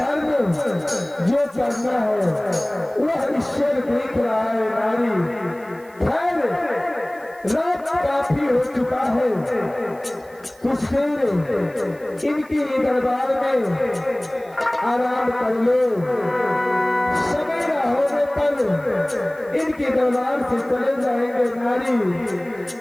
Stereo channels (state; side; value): noise; right; hiss, 27 dB below the sound